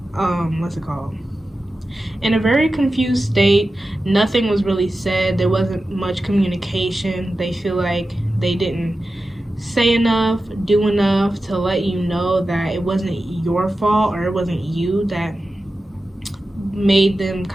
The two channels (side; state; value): both; normal; correlation 0.93